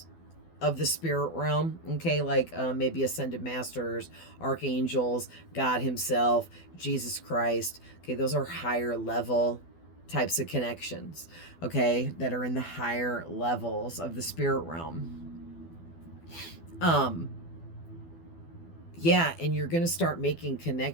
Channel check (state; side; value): late; right; 12 ms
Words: of the spirit realm, okay, like maybe ascended masters, archangels, God himself, Jesus Christ. Okay, those are higher level types of connections, okay, that are in the higher levels of the spirit realm. Yeah, and you're going to start making